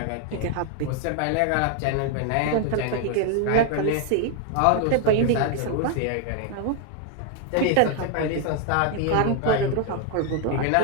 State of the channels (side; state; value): both; different; correlation 0.00